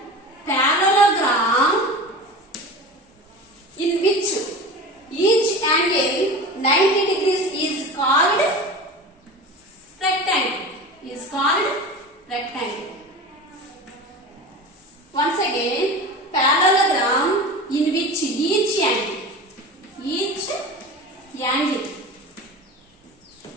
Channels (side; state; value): both; normal; correlation 0.32